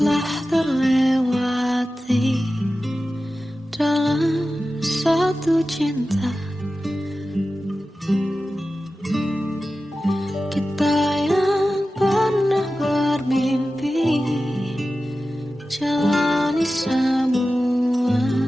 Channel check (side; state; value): both; normal; correlation 0.94